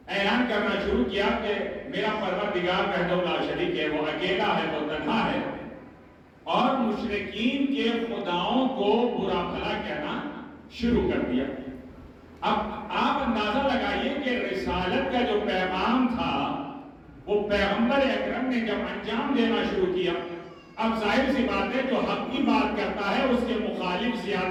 اعلان کرنا شروع کیا کہ میرا پروردگار وحدہ لا شریک ہے، وہ اکیلا ہے، وہ تنہا ہے، اور مشرکین کے خداؤں کو برا بھلا کہنا شروع کر دیا۔ اب آپ اندازہ لگائیے کہ رسالت کا جو پیغام تھا وہ پیغمبر اکرم نے جب انجام دینا شروع کیا، اب ظاہر سی بات ہے جو حق کی بات کرتا ہے اس کے مخالف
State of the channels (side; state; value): both; identical; correlation 1.00